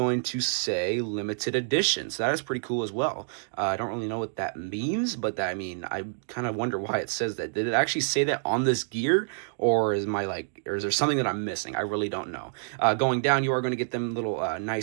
to say limited edition. So that is pretty cool as well. I don't really know what that means, but I mean, I kind of wonder why it says that. Did it actually say that on this gear? Or is there something that I'm missing? I really don't know. Going down, you are going to get them little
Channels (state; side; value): silent; left; digital silence